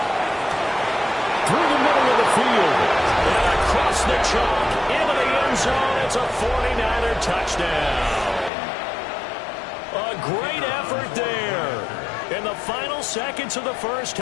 Through the middle of the field. And across the chalk into the end zone. It's a 49er touchdown. A great effort there in the final seconds of the 1st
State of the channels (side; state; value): right; drops out; at 8.5 s